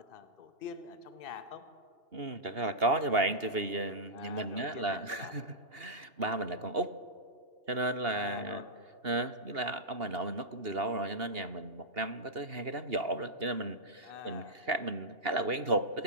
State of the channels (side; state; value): left; late; 2.8 ms